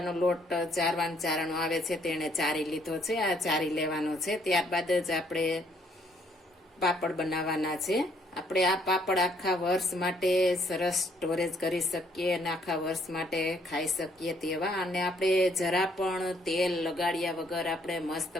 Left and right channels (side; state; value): both; normal; correlation 0.67